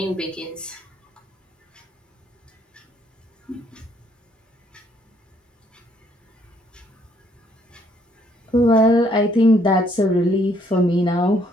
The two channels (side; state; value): both; normal; correlation 0.67